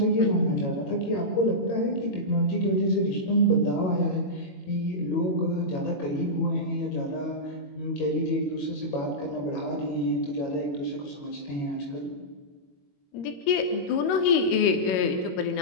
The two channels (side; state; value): right; late; 21 ms